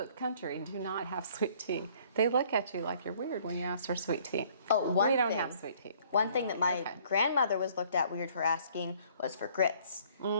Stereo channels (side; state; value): both; inverted; correlation -0.58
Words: country do not have sweet tea. They look at you like you're weird when you ask for sweet tea. Oh, one We don't thing. have sweet tea. One thing that my Okay. grandmother was looked at weird for asking was for grits.